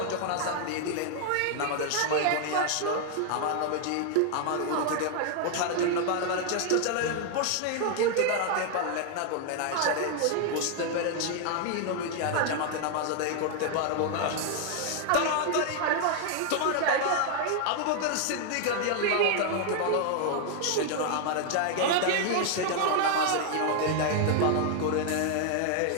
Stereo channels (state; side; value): different; both; correlation 0.00